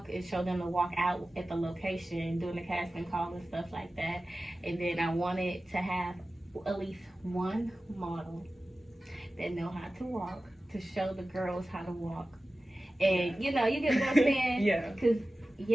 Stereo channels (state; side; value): normal; both; correlation 0.96